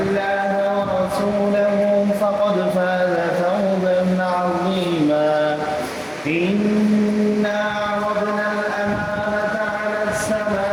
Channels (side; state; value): both; identical; correlation 1.00